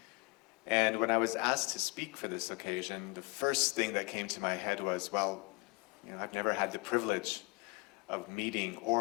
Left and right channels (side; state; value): right; quieter; 27.3 dB